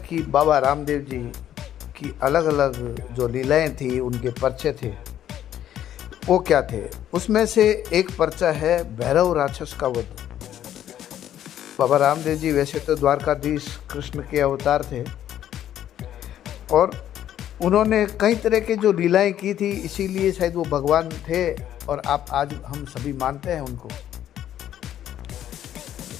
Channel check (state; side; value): quieter; right; 11.2 dB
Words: कि बाबा रामदेव जी की अलग अलग जो लीलाएं थी, उनके पर्चे थे, वो क्या थे? उसमें से एक पर्चा है भैरव राक्षस का वध। बाबा रामदेव जी वैसे तो द्वारकाधीश कृष्ण के अवतार थे और उन्होंने कई तरह के जो लीलाएं की थी, इसीलिए शायद वो भगवान थे और आप आज हम सभी मानते हैं उनको।